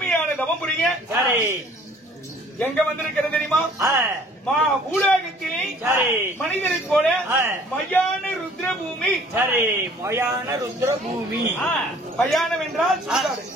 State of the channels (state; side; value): normal; both; correlation 0.55